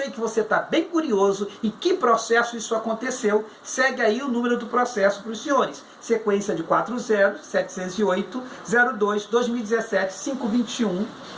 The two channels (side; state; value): both; identical; correlation 1.00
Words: que você está bem curioso em que processo isso aconteceu, segue aí o número do processo para os senhores. Sequência de